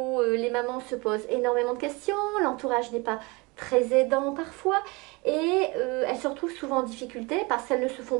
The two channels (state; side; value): quieter; left; 26.4 dB